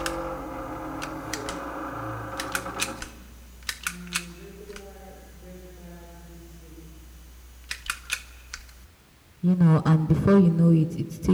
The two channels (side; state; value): both; identical; correlation 1.00